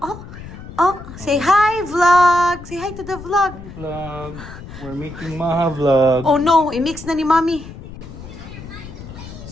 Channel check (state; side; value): noise; left; rumble, 14 dB below the sound